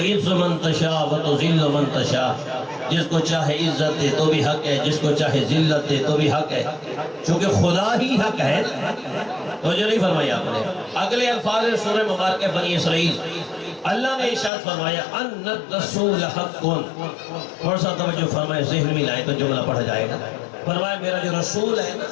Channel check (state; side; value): drops out; right; at 14.5 s